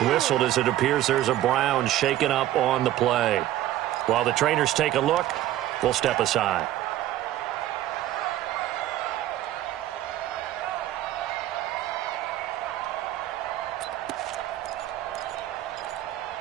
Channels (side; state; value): left; quieter; 13.8 dB